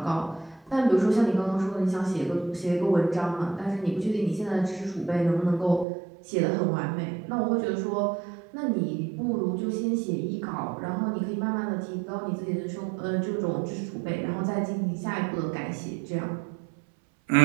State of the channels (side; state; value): left; drops out; at 5.9 s